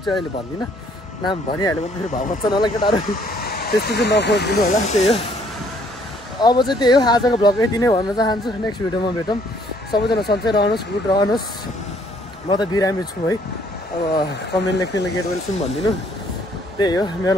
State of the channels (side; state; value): both; normal; correlation 0.63